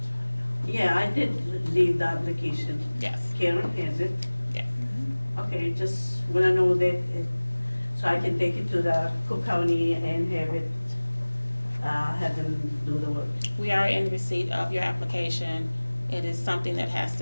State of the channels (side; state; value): both; inverted; correlation -1.00